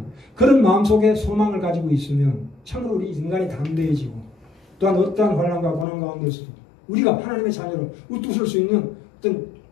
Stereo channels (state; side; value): drops out; right; at 5.9 s